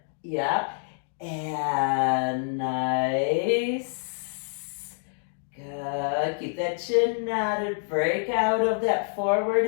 Yeah. And nice. Good. Keep that chin knotted. Break out of that forward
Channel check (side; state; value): right; silent; digital silence